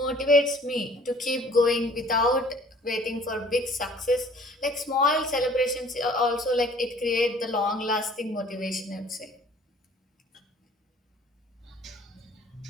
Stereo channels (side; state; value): both; normal; correlation 0.53